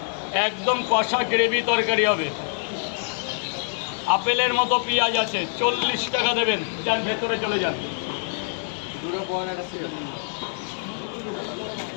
একদম কষা গ্রেভি তরকারি হবে। আপেলের মতো পেঁয়াজ আছে, 40 টাকা দেবেন। যান ভেতরে চলে যান।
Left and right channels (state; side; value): silent; right; 62 dB below the other